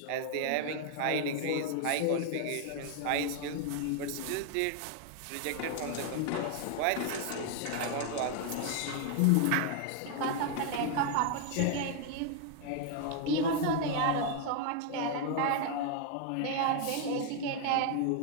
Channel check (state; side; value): different; both; correlation 0.00